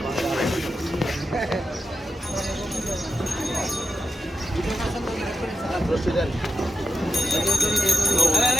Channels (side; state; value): both; normal; correlation 0.89